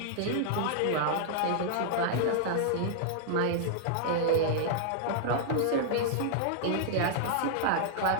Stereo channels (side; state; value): both; different; correlation -0.01